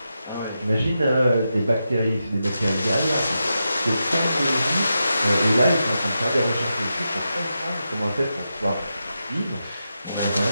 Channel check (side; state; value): both; inverted; correlation -0.88